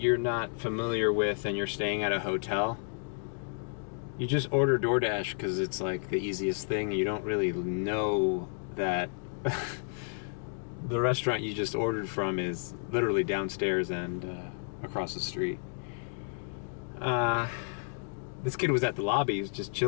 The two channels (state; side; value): silent; right; digital silence